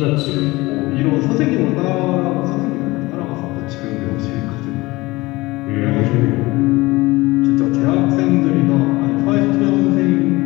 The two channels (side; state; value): right; quieter; 21.1 dB